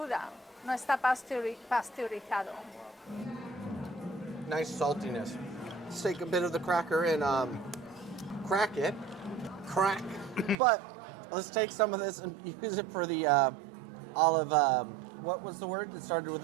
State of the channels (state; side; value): drops out; left; at 10.6 s